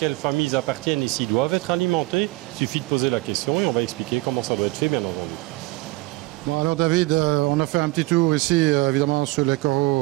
famille ils appartiennent et s'ils doivent être alimentés, il suffit de poser la question et on va expliquer comment ça doit être fait, bien entendu. Bon, alors David, on a fait un petit tour ici évidemment sur les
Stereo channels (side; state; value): left; quieter; 21.6 dB